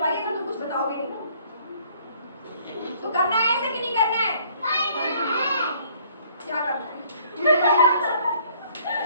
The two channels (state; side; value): inverted; both; correlation -0.60